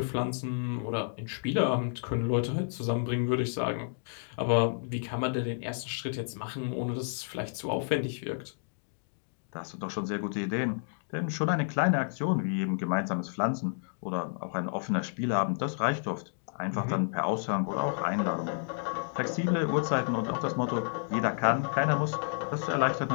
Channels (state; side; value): silent; right; digital silence